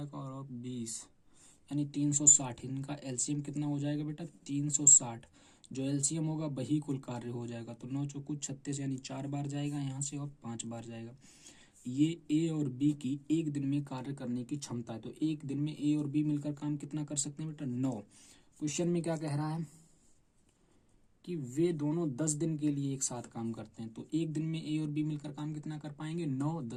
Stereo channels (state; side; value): identical; both; correlation 1.00